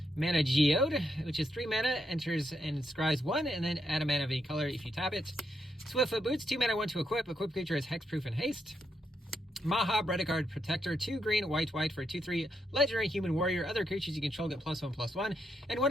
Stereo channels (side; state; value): both; normal; correlation 0.80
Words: Mana Geode, which is 3 mana, enters and scries 1, and then add a mana of any color if you tap it. Swiftfoot Boots, 2 mana, 1 to equip. Equip creature has hexproof and haste. Maha, Predacard Protector, 2 green, white, white for a 2/3 legendary human warrior. Other creatures you control get +1/+1. And